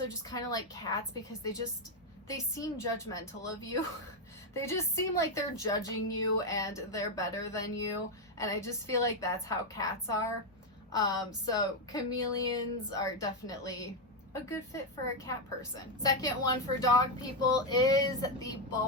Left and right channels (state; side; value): normal; both; correlation 0.04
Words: just kind of like cats because they seem judgmental of you. They just seem like they're judging you and they're better than you. And I just feel like that's how cats are. So chameleons are definitely a good fit for a cat person. Second one for dog people is the